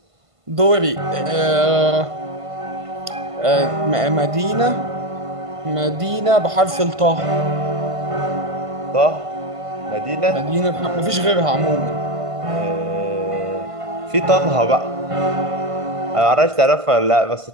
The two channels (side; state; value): left; late; 1.5 ms